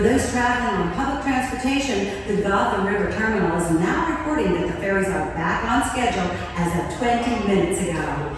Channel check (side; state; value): both; identical; correlation 1.00